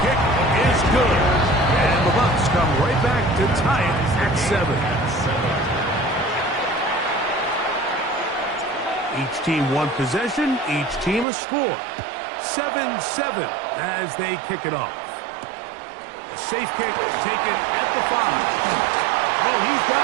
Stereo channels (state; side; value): drops out; left; at 11.2 s